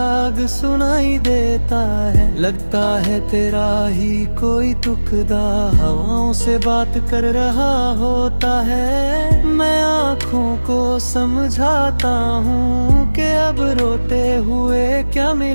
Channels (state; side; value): inverted; both; correlation -1.00